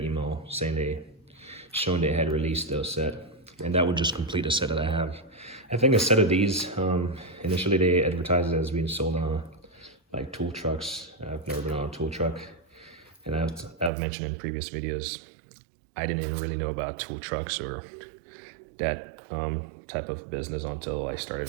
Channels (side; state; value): left; drops out; at 13.9 s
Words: email saying showing they had released those set, and that would just complete a set that I have. I think a set of these, initially they advertised it as being sold on like tool trucks. I've never been on a tool truck, and I've mentioned in previous videos, I didn't even really know about tool trucks or that type of business until I started